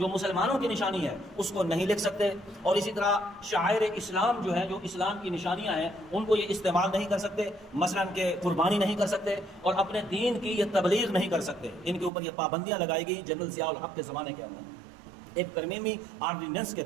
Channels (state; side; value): drops out; left; at 12.1 s